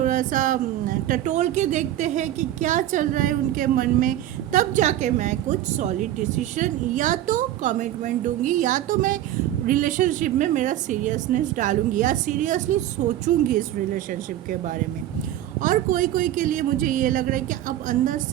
सा टटोल के देखते हैं कि क्या चल रहा है उनके मन में, तब जाके मैं कुछ सॉलिड डिसीजन या तो कमिटमेंट दूंगी, या तो मैं रिलेशनशिप में मेरा सीरियसनेस डालूंगी, या सीरियसली सोचूंगी इस रिलेशनशिप के बारे में। और कोई कोई के लिए मुझे ये लग रहा है कि अब अंदर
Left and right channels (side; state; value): left; quieter; 12.9 dB